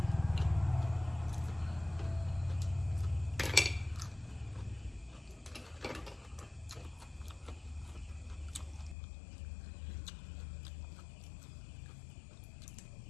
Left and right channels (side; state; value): right; drops out; at 9.0 s